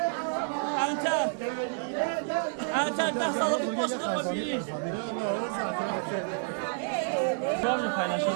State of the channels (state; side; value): silent; left; digital silence